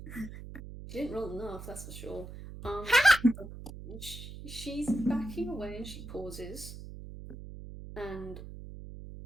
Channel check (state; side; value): noise; right; hum, 12 dB below the sound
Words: She didn't roll enough, that's for sure. She's backing away and she pauses, and